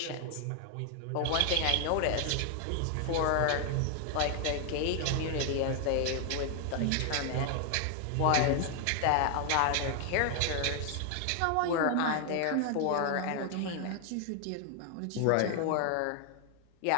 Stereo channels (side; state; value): both; different; correlation 0.00